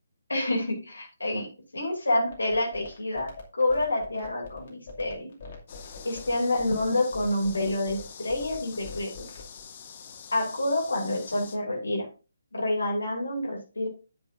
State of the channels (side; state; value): both; inverted; correlation -0.86